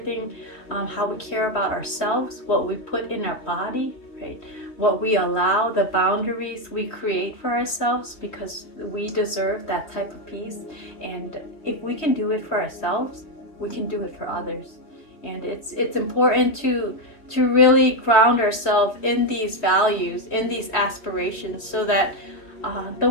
how we care about ourselves, what we put in our body, right? What we allow, the boundaries we create for ourselves, because we deserve that type of peace. And if we can do it for ourselves, we can do it for others. And it's important to really ground ourselves in these values, in these aspirations, so that the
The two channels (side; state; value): right; late; 3.1 ms